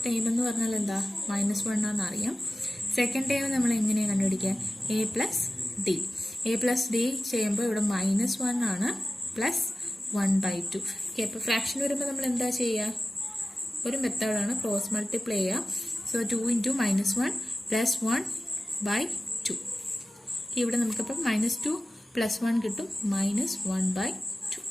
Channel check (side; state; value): both; normal; correlation 0.95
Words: ടൈം എന്ന് പറഞ്ഞാൽ എന്താ? -1 ആണെന്ന് അറിയാം. സെക്കൻഡ് ടൈം നമ്മൾ എങ്ങനെയാണ് കണ്ടുപിടിക്കുക? A+D. A+D ചെയ്യുമ്പോൾ ഇവിടെ -1 ആണ് +1/2. ഓക്കെ, അപ്പോൾ ഫ്രാക്ഷൻ വരുമ്പോൾ നമ്മൾ എന്താ ചെയ്യുക? ഒരു മെത്തേഡാണ് ക്രോസ് മൾട്ടിപ്ലൈ ചെയ്യുക. So 2 into -1 + 1/2. ഇവിടെ നമുക്കപ്പോൾ -2 + 1 കിട്ടും, -1/2.